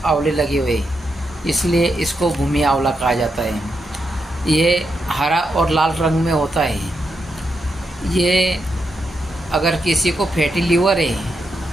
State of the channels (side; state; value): both; normal; correlation 0.84